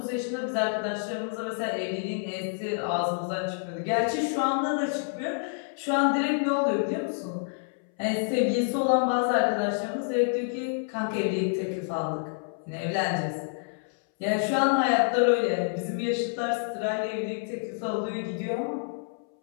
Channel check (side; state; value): right; silent; 59 dB below the other